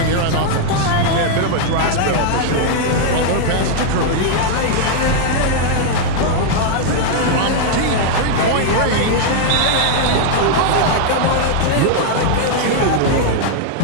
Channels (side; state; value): both; different; correlation -0.01